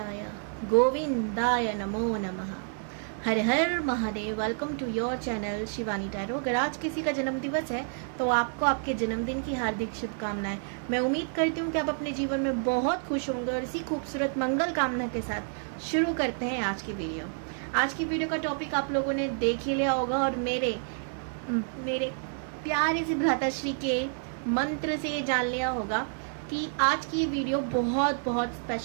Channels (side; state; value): left; silent; 58 dB below the other